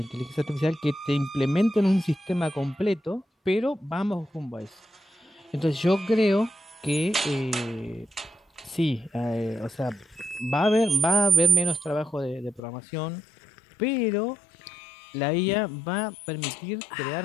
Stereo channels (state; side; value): drops out; right; at 12.6 s